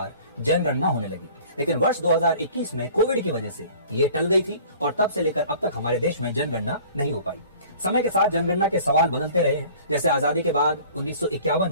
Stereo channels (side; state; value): both; inverted; correlation -0.48